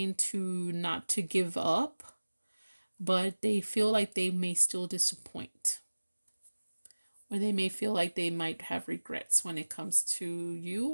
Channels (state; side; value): inverted; both; correlation -1.00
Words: to not to give up, but they feel like they may still disappoint. Or they may feel like they might have regrets when it comes to you,